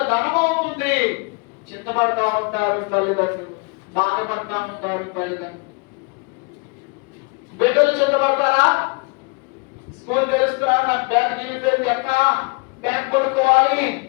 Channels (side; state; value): right; quieter; 31.1 dB